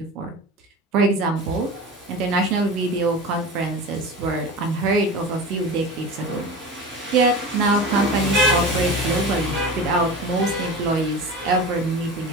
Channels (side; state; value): both; normal; correlation 0.31